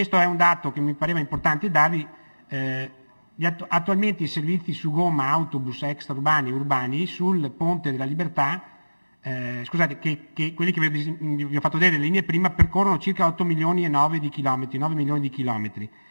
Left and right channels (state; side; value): inverted; both; correlation -1.00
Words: è un dato che mi pareva importante darvi. Attualmente i servizi su gomma, autobus extraurbani e urbani sul Ponte della Libertà, che quelli che vi ho fatto vedere le linee prima, percorrono circa 8 milioni e 9 milioni di chilometri.